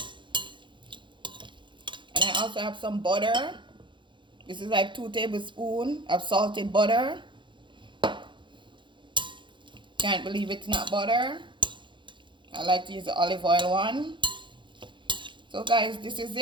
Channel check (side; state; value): left; late; 0.23 ms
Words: I also have some butter. This is like 2 tablespoons of salted butter. Can't believe it's not butter. I like to use the olive oil one. So guys, this is